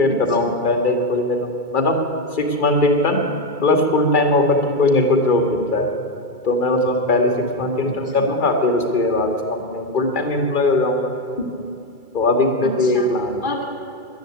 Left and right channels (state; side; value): late; right; 2.3 ms